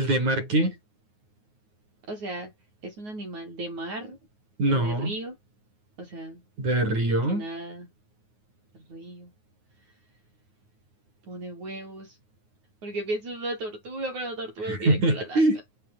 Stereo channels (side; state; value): left; late; 9.5 ms